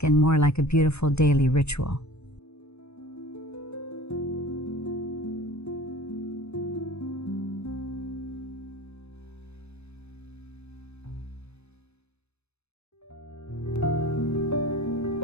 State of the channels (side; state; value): right; late; 0.80 ms